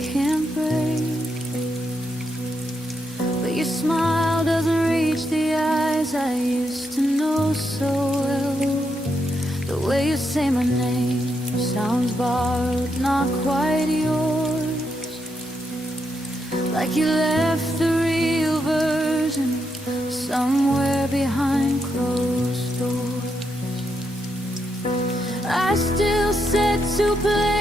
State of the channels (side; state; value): both; normal; correlation 0.81